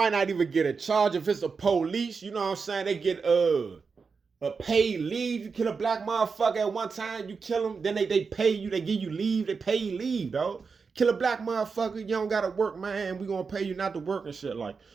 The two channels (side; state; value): left; quieter; 5.1 dB